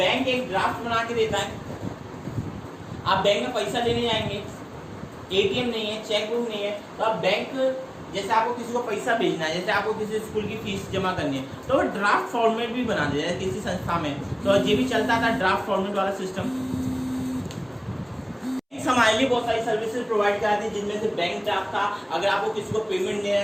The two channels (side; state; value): both; identical; correlation 1.00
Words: एक ड्राफ्ट बना के देता है। आप बैंक में पैसा लेने जाएंगे, एटीएम नहीं है, चेक बुक नहीं है, तो आप बैंक, जैसे आपको किसी को पैसा भेजना है, जैसे आपको किसी स्कूल की फीस जमा करनी है, तो वो ड्राफ्ट फॉर्मेट भी बना दिया है किसी संस्था में, तो ये भी चलता था ड्राफ्ट फॉर्मेट वाला सिस्टम। हमारे लिए बहुत सारी सर्विसेज प्रोवाइड कराती है, जिनमें से बैंक ड्राफ्ट था। अगर आपको किसी को पेमेंट देना